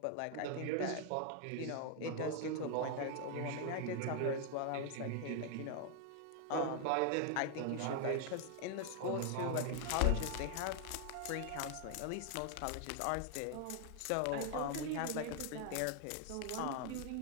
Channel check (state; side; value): different; both; correlation 0.00